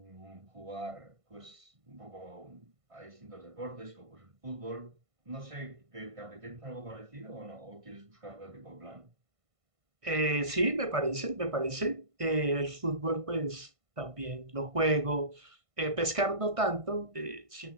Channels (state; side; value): late; left; 1.5 ms